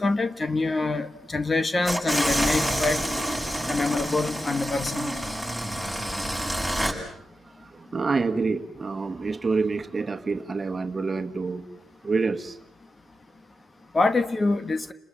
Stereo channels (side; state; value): both; normal; correlation 0.90